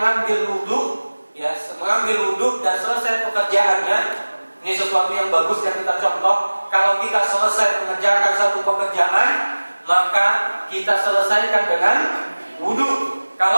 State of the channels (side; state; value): both; inverted; correlation -1.00